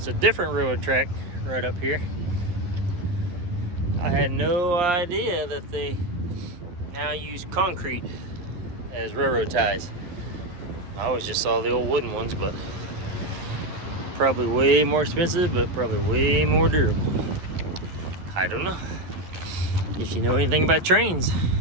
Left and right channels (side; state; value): left; late; 11 ms